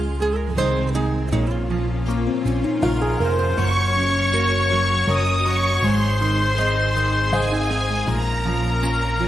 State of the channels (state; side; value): normal; both; correlation 0.89